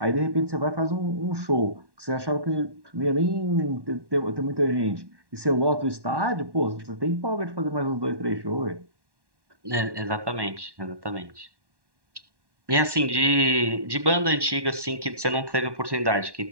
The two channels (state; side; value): late; left; 1.1 ms